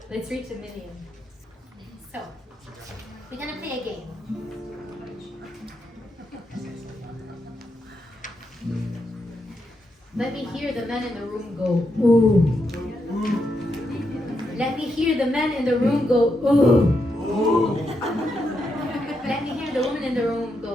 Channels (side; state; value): both; normal; correlation 0.83